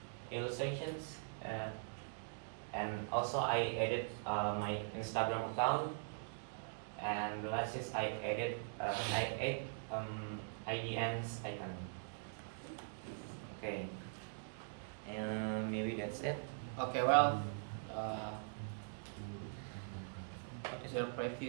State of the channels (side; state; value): left; silent; digital silence